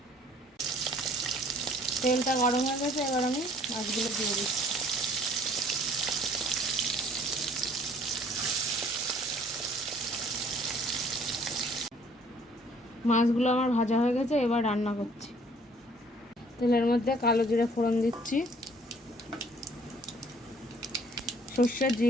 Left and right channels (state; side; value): normal; both; correlation 0.57